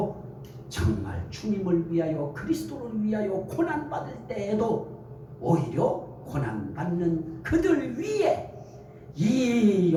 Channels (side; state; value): both; identical; correlation 1.00